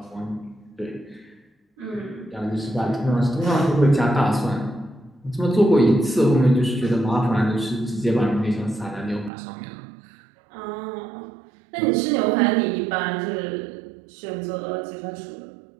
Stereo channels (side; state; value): left; drops out; at 9.3 s